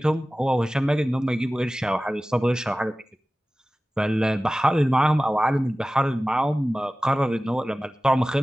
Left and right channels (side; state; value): both; normal; correlation 0.97